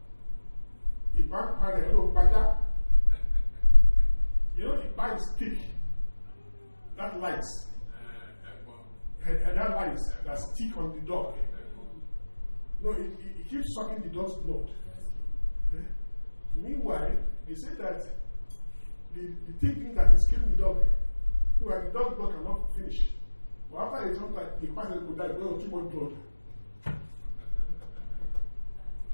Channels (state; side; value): inverted; both; correlation -1.00